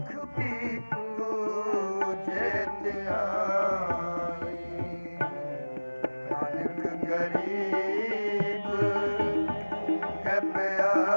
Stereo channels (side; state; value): both; inverted; correlation -1.00